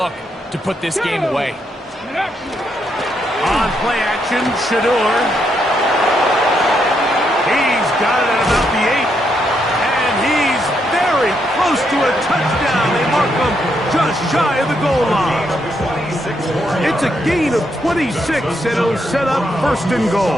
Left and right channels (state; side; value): normal; both; correlation 0.78